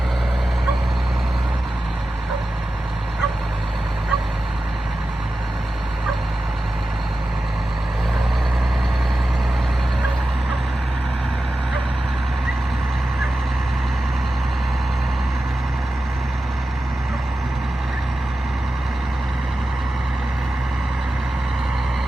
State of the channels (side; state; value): both; normal; correlation 0.93